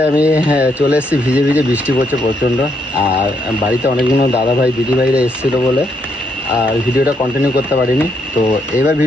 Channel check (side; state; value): both; normal; correlation 0.76